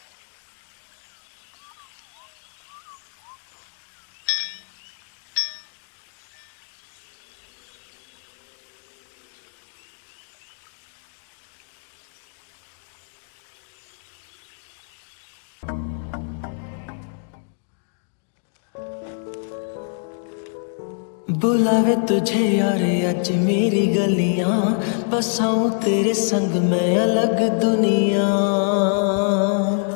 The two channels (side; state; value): right; silent; digital silence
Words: बुलावे तुझे यार आज मेरी गलियां बसाऊं तेरे संग मैं अलग दुनिया।